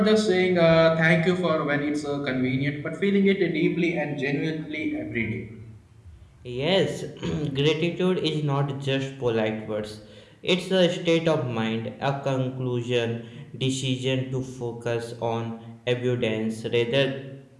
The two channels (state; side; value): identical; both; correlation 1.00